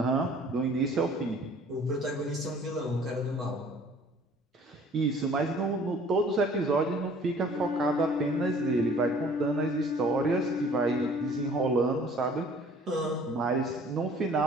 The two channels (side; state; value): both; normal; correlation 0.53